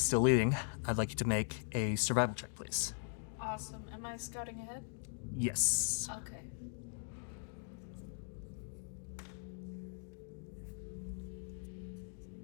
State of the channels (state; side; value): silent; right; 51 dB below the other